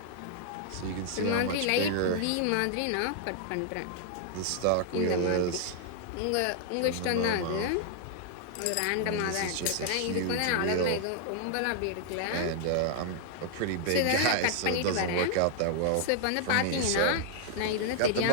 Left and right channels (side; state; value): both; different; correlation 0.00